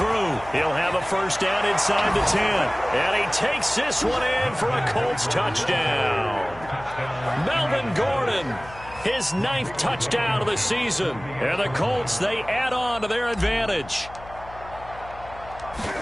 He'll have a 1st down inside the 10. And he takes this one in for a Colts touchdown. Melvin Gordon, his 9th touchdown of the season. And the Colts, they add on to their advantage.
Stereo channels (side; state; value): left; noise; hum, 18 dB below the sound